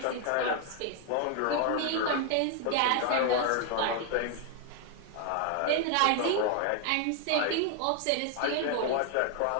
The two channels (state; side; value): different; both; correlation 0.00